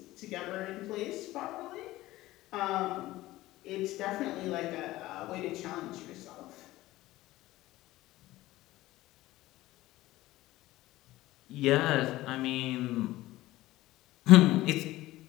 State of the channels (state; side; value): quieter; right; 17.1 dB